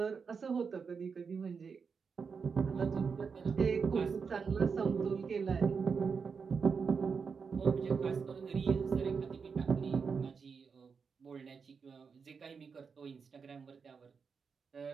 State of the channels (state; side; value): quieter; left; 5.6 dB